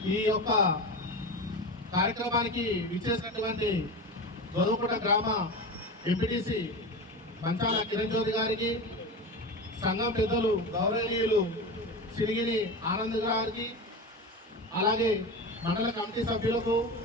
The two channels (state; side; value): normal; both; correlation 0.25